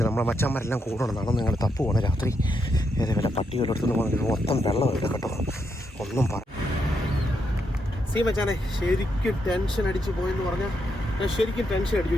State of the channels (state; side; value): normal; both; correlation 0.80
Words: നമ്മളെ മച്ചന്മാരെല്ലാം കൂടണം. നടന്ന് നിങ്ങൾ തപ്പ് പോകണം രാത്രി. ഏതേ വല്ല പട്ടികളെടുത്തുനിന്ന് പോകുന്നത് മൊത്തം വെള്ളമില്ല കേട്ടോ. ഒന്നും പറ മച്ചാനെ ശരിക്കും ടെൻഷൻ അടിച്ച് പോയെന്ന് പറഞ്ഞാൽ ഞാൻ ശരിക്കും ടെൻഷൻ അടിച്ചു.